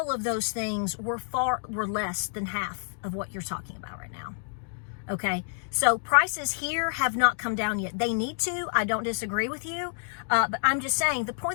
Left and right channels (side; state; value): right; silent; digital silence